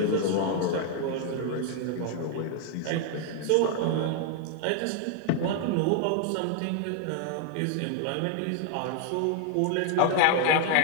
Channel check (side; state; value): both; different; correlation 0.00